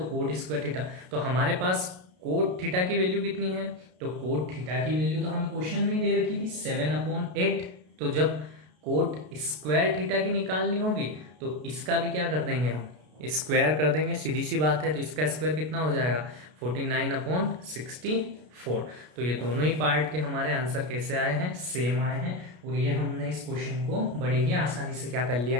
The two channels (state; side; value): late; left; 33 ms